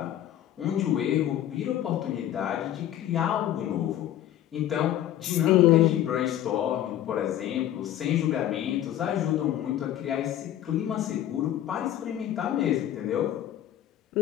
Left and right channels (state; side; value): quieter; right; 12.0 dB